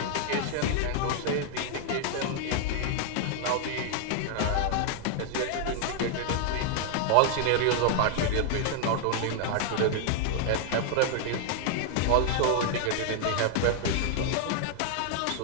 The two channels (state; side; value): different; both; correlation 0.00